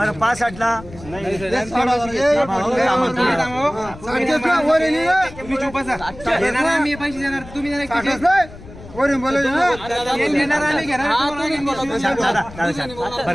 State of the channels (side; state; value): left; noise; rumble, 17 dB below the sound